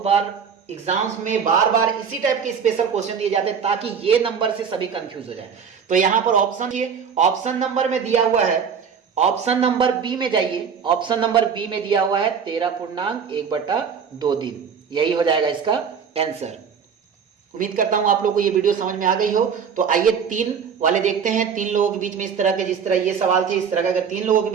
बार एग्जाम्स में बार बार इसी टाइप के स्पेशल क्वेश्चन दिए जाते हैं ताकि ये नंबर से सभी कंफ्यूज हो जाए। तो यहां पर ऑप्शन ये ऑप्शन नंबर में दिया हुआ है, ऑप्शन नंबर बी में जाइए, ऑप्शन नंबर बी में दिया हुआ है 13.1/2 दिन, यही हो जाएगा इसका आंसर। उम्मीद करता हूं आप लोगों को ये वीडियो समझ में आ गई हो। तो आइए 3 वाले देखते हैं, 3 लोगों के बीच में इस तरह के, जिस तरह ये सवाल थे इस तरह का अगर 3 लोगों के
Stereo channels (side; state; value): left; quieter; 6.7 dB